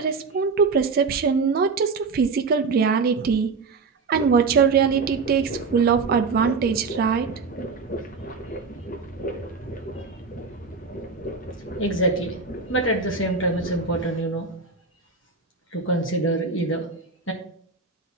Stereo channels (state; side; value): quieter; left; 4.6 dB